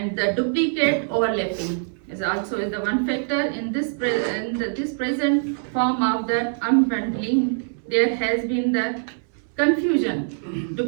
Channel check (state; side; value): silent; left; 63 dB below the other